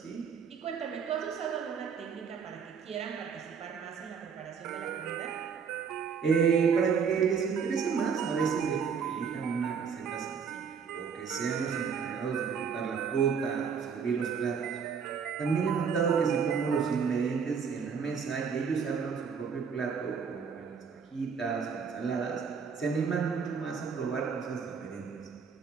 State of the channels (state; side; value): quieter; left; 6.3 dB